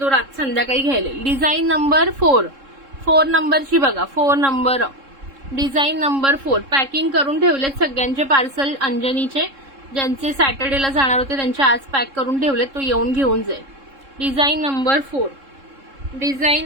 रात संध्याकाळी घ्यायला. डिझाईन नंबर 4 नंबरची बघा, 4 नंबर. डिझाईन नंबर 4 पॅकिंग करून ठेवलेत सगळ्यांचे पार्सल. अंजनीचे ज्यांचे सॅटर्डेला जाणार होते त्यांचे आज पॅक करून ठेवलेत, तो येऊन घेऊन जाईल. Design number 4,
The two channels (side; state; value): left; late; 3.7 ms